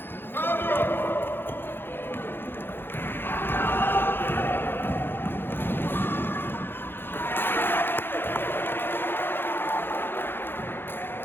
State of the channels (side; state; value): right; late; 0.10 ms